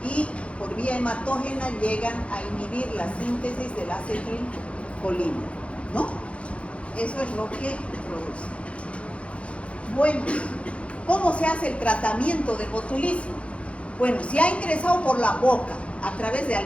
y por vía hematógena llegan a inhibir la síntesis del acetilcolina, ¿no? Eso es lo que produce. Bueno, ¿cómo se hace el tratamiento del botulismo? Bueno, si ha ingresado por la boca a través de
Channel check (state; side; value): late; right; 0.061 ms